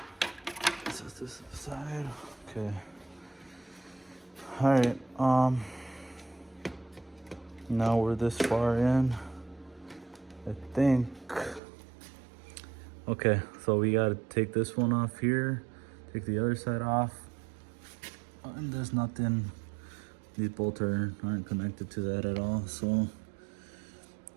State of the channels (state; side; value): drops out; left; at 11.6 s